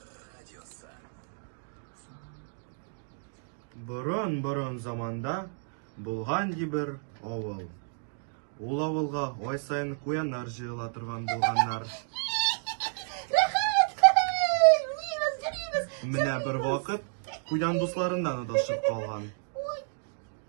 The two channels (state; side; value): silent; left; digital silence